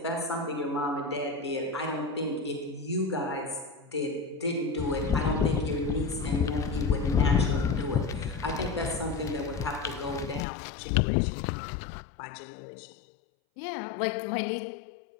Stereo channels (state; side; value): drops out; right; at 10.5 s